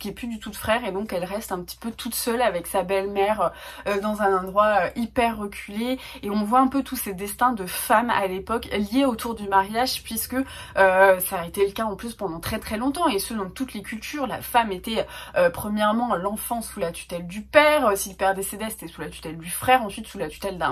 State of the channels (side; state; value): both; identical; correlation 1.00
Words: qu'il n'y ait plus du tout de frère, et donc elle reste un petit peu toute seule avec sa belle-mère dans un endroit hyper reculé, et on voit un peu tous ces destins de femmes à l'époque liés autour du mariage, puisque ça a été le cas en plus pendant très longtemps, et ce dans toutes les cultures. La femme était premièrement l'enfant sous la tutelle du père, si le père décédait c'était sous la tutelle du frère, ensuite sous la tutelle